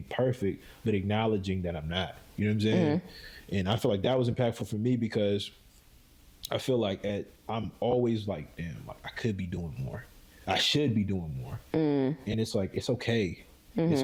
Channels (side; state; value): both; identical; correlation 1.00